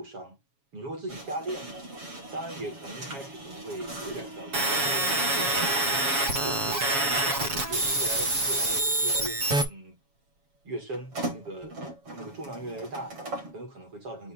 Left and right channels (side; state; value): left; late; 7.2 ms